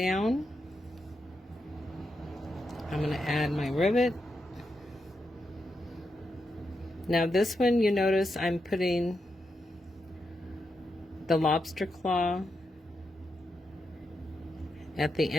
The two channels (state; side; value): normal; both; correlation 0.85